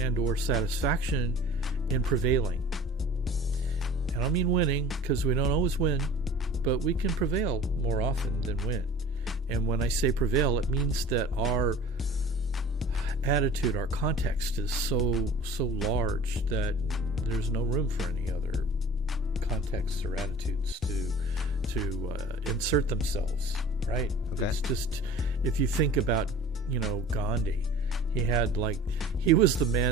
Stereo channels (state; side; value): normal; both; correlation 0.43